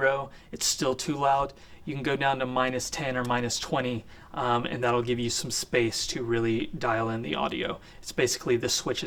it's still too loud. You can go down to minus 10 or minus 20, and that'll give you some space to really dial in the audio. It's basically the switch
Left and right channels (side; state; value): both; identical; correlation 1.00